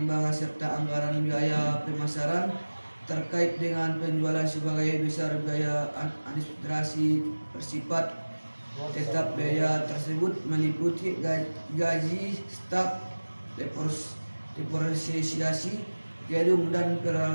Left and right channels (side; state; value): both; inverted; correlation -1.00